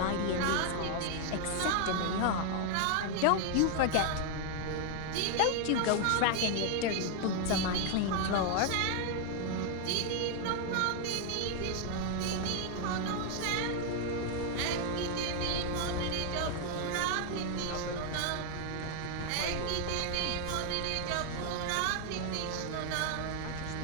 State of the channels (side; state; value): both; different; correlation 0.00